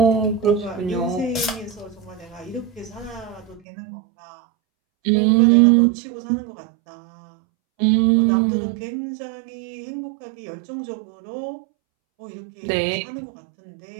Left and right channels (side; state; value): left; drops out; at 3.6 s